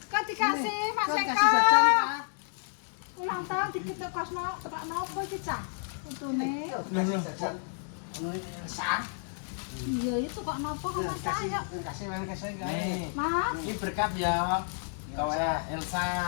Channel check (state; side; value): silent; right; 57 dB below the other